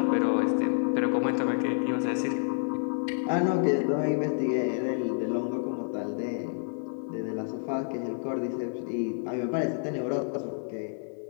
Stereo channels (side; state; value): right; silent; 59 dB below the other